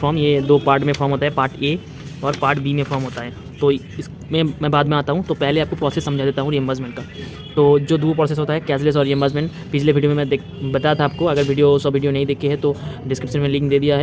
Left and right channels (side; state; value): both; identical; correlation 1.00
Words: ये दो पार्ट में फॉर्म होता है, पार्ट ए और पार्ट बी में फॉर्म होता है। तो इसमें मैं बाद में आता हूँ, तो पहले आपको प्रोसेस समझा देता हूँ रियम्बर्समेंट का। तो जो दो प्रोसेस होता है कैशलेस और रियम्बर्समेंट, पिछले वीडियो में मैं बताया था आपको। अगर वीडियो नहीं देखी है तो डिस्क्रिप्शन में लिंक दे दिया